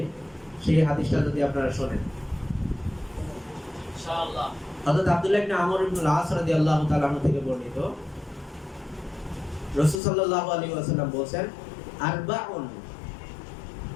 সেই হাদিসটা যদি আপনারা শুনেন। ইনশাআল্লাহ হযরত আব্দুল্লাহ ইবনে আমর ইবনে আল-আস রাদিয়াল্লাহু তাআলা আনহু থেকে বর্ণিত, রাসূল সাল্লাল্লাহু আলাইহি ওয়াসাল্লাম বলেন, আরবাউন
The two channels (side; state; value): right; drops out; at 10.0 s